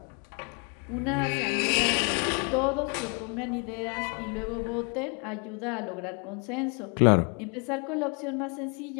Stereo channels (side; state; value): right; quieter; 35.0 dB